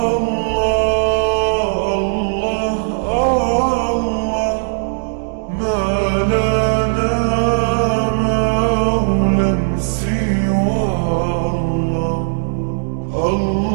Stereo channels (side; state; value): left; silent; digital silence